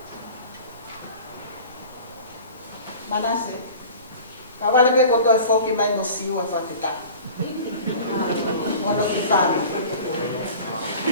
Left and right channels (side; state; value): both; inverted; correlation -0.41